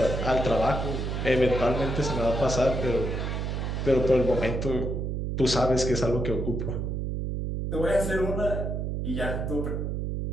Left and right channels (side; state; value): right; noise; hum, 2 dB below the sound